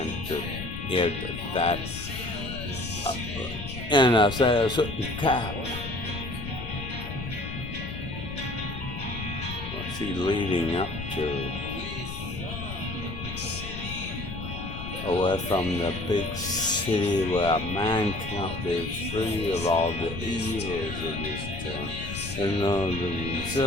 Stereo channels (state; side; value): noise; left; rumble, 8 dB below the sound